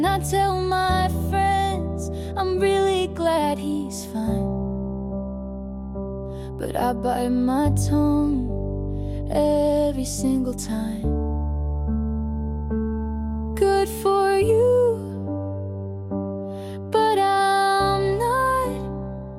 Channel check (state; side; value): identical; both; correlation 1.00